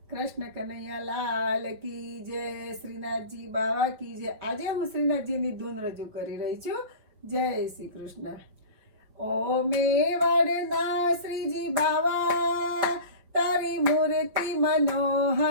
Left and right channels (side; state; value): left; late; 5.2 ms